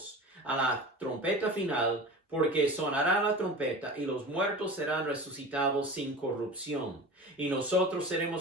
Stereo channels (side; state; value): both; normal; correlation 0.34